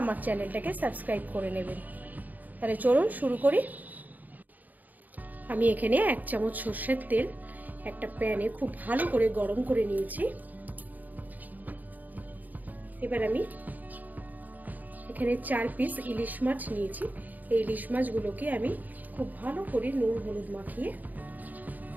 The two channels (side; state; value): left; late; 0.082 ms